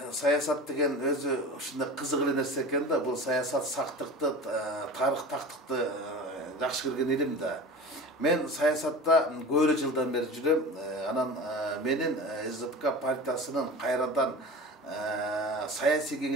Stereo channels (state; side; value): normal; both; correlation 0.34